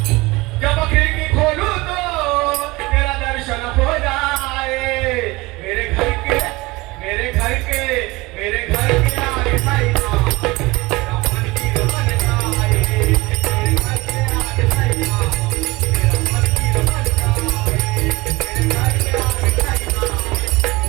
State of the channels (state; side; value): quieter; left; 22.2 dB